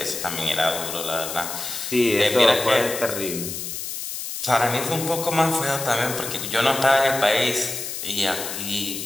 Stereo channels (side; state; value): left; noise; hiss, 6 dB below the sound